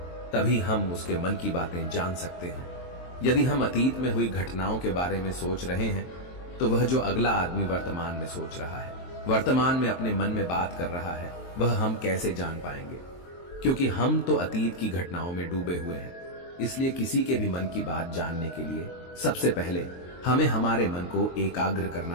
तभी हम उसके मन की बातें जान सकते हैं। यदि हम अतीत में हुई घटनाओं के बारे में सोच रहे हैं तो वह जो अगला आदमी वर्तमान में सोच रहा है, वर्तमान में अपने मन में बात कर रहा है, वह हम कैसे जान पाएंगे? क्योंकि हम तो अतीत की घटनाओं में डूबे हुए हैं। इसलिए किसी के भी मन की बात जानने के लिए सबसे पहले हमें हमारे मन को एकाग्र करना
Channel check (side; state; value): right; late; 23 ms